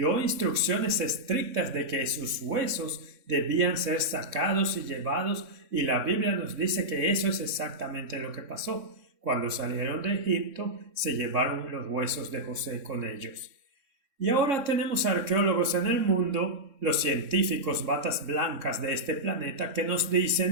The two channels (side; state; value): left; late; 3.6 ms